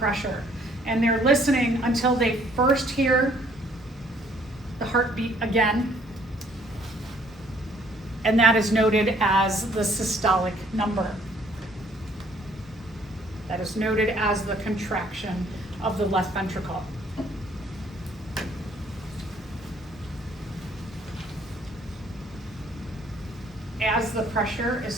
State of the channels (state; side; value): normal; both; correlation 0.62